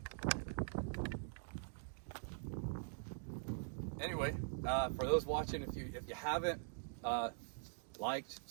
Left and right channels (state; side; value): silent; left; digital silence